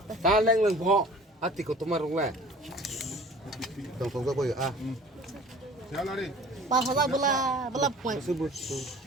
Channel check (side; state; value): both; normal; correlation 0.46